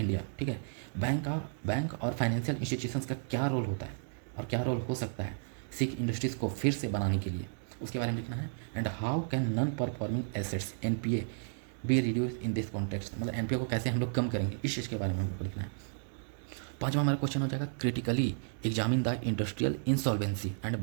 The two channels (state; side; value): silent; left; digital silence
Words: ठीक है। बैंक और फाइनेंशियल इंस्टीट्यूशंस का क्या रोल होता है और क्या रोल हो सकता है सिक इंडस्ट्रीज़ को फिर से बनाने के लिए, उसके बारे में लिखना है। And how can non performing assets NPA be reduce in this context, मतलब NPA को कैसे हम लोग कम करेंगे, इस चीज़ के बारे में हम लोग को लिखना है। पांचवा हमारा क्वेश्चन हो जाएगा critically examine the industrial insolvency and